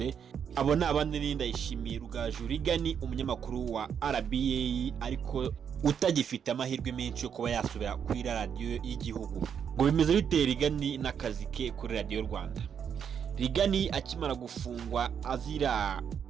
Abo ni abandi ni Ndayishimiye Rugaju Rigani, umunyamakuru wa RBA ariko utagifite amahirwe menshi yo kuba yasubira kuri radio y'igihugu. Ngo bimeze bite Rigani n'akazi ke kuri radio Rwanda? Rigani akimara gufungwa azira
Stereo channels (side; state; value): left; quieter; 7.7 dB